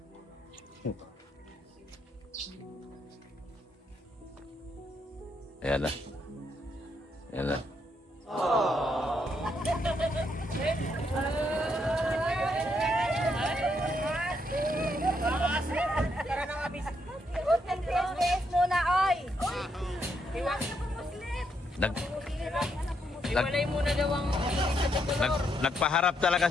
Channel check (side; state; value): both; normal; correlation 0.76